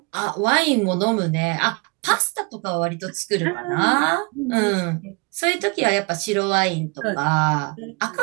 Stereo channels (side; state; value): left; quieter; 31.6 dB